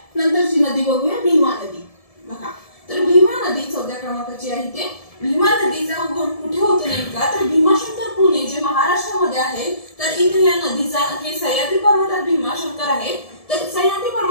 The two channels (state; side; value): late; right; 1.7 ms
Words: नंतरची नदी बघूया भीमा नदी। बघा तर भीमा नदी 14 क्रमांकाची आहे। ते भीमा नदीचा उगम कुठे होतो नेमका तर भीमाशंकर पुणे जे महाराष्ट्रामध्ये आहे तर इथे या नदीचा हे सह्याद्री पर्वतात भीमाशंकर आहे तर सह्याद्री